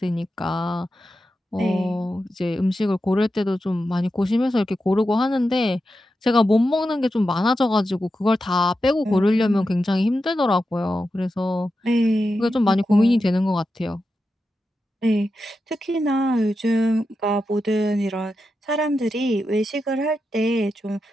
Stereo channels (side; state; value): both; normal; correlation 0.89